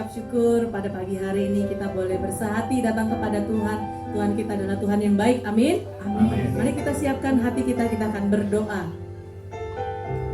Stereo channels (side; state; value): both; identical; correlation 1.00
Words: syukur pada pagi hari ini kita boleh bersehati datang kepada Tuhan. Tuhan kita adalah Tuhan yang baik. Amin. Amin. Mari kita siapkan hati kita akan berdoa.